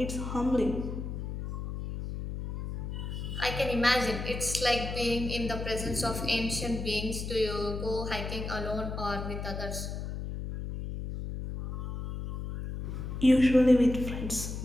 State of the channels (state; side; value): noise; left; hum, 5 dB below the sound